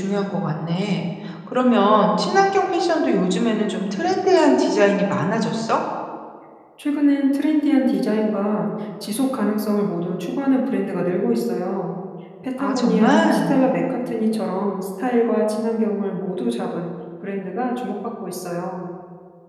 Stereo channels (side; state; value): both; identical; correlation 1.00